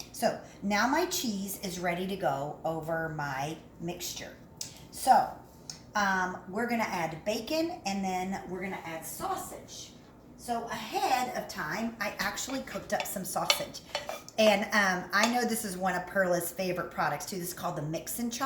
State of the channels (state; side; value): identical; both; correlation 1.00